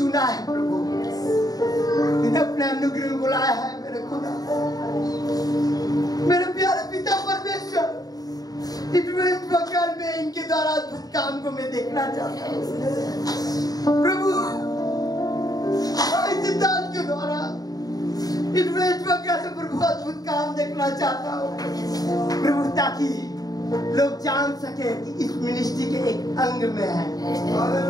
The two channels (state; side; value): late; right; 0.18 ms